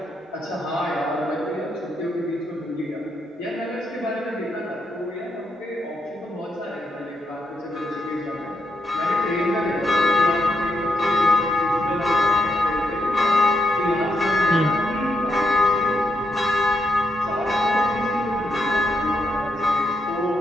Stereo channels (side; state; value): both; normal; correlation 0.80